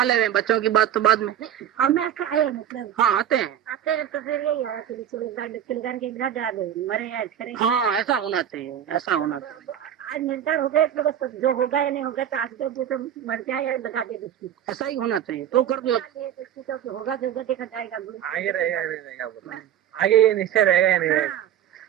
हुए, बच्चों की बात तो बाद में। हम ऐसा आए मतलब हाँ, आते हैं तो फिर यही आया कि चिलगान के बिना डरा दे मरे याद करें। हाँ, ऐसा होना चाहिए, ऐसा होना चाहिए। आज निर्धार हो गए तो बस जो होगा या नहीं होगा तो आज तो मर जाए या लगा दे दुष्टी, ऐसा ही होना चाहिए तो कर दो। दुष्टी तो होगा जो होगा देखा जाएगा। आगे रहेगा नहीं रहेगा, आगे ये निश्चय रहेगा या नहीं रहेगा।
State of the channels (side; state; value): left; quieter; 10.3 dB